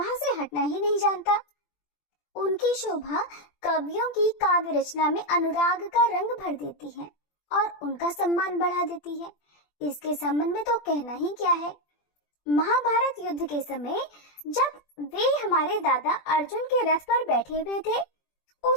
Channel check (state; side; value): late; right; 20 ms